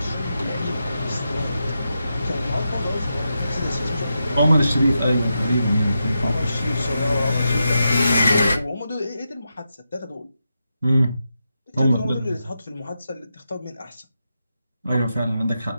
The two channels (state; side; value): inverted; both; correlation -0.87